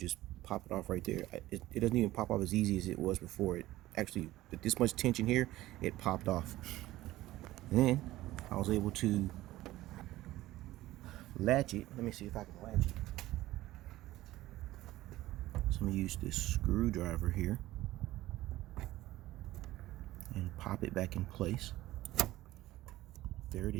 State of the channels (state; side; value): quieter; left; 16.3 dB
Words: pop it off right there. It doesn't even pop off as easy as it was before. It actually, with this much tension here, it popped off. And then I was able to latch it. Let me see if I can latch it. So I'm gonna use this screwdriver here and pop it back in place. There it